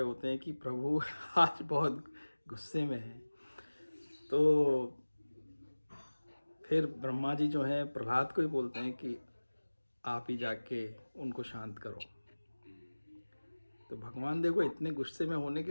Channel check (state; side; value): inverted; both; correlation -1.00